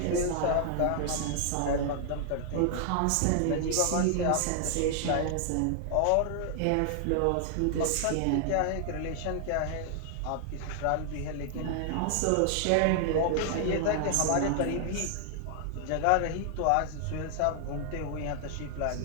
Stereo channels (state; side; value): different; both; correlation 0.00